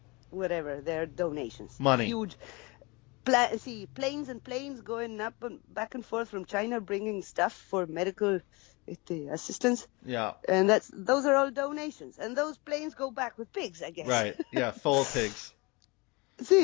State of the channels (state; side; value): quieter; right; 26.8 dB